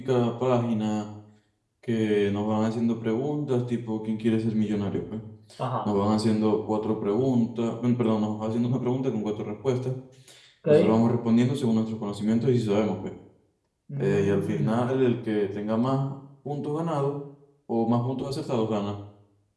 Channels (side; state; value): both; identical; correlation 1.00